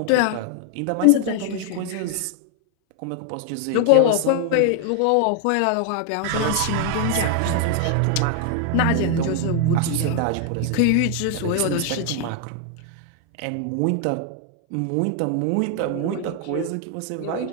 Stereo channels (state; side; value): different; both; correlation 0.00